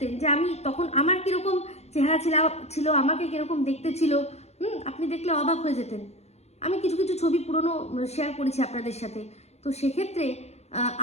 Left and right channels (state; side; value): late; right; 0.31 ms